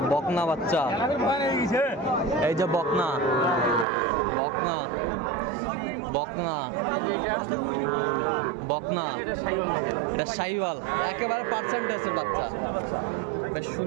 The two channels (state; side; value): drops out; left; at 3.9 s